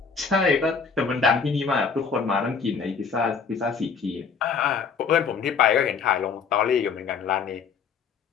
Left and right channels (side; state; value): right; quieter; 5.7 dB